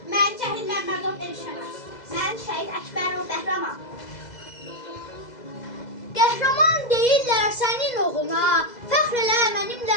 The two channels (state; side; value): late; right; 2.0 ms